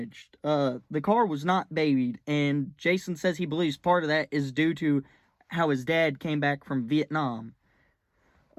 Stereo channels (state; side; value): identical; both; correlation 1.00